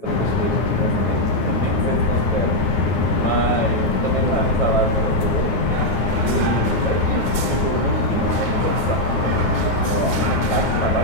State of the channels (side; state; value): right; late; 8.8 ms